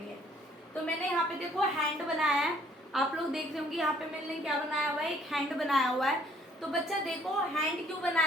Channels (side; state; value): both; normal; correlation 0.61